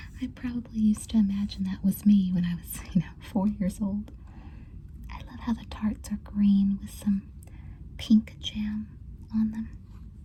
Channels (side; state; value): both; identical; correlation 1.00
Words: I probably used to imagine that was me when I was, 4 years old. I love how the tarts are green with some pink jam on them.